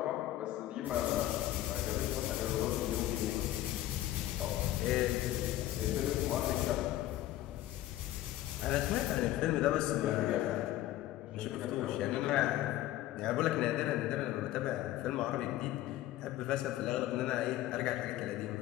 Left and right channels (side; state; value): right; quieter; 14.3 dB